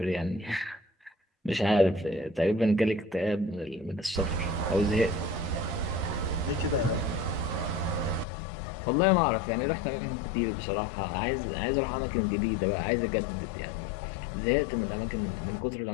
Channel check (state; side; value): drops out; right; at 8.2 s